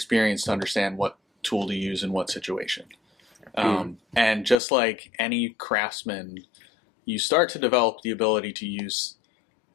to understand what tool to use in what situation. And just like any craftsman, you start to develop the ability to use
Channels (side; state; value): right; drops out; at 4.5 s